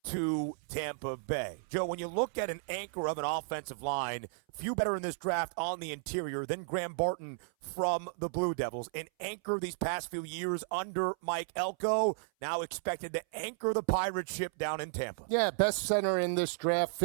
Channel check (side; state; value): left; silent; 55 dB below the other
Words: to Tampa Bay. Joe, when you look at an anchor of an offensive line, few better in this draft on the interior than Graham Barton from the Blue Devils. An anchor these past few years under Mike Elko, now expected to anchor the pirate ship down in Tampa. Yeah, best center in this draft,